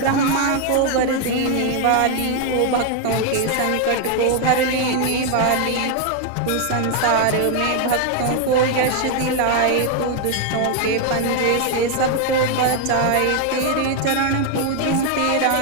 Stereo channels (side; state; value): both; different; correlation 0.01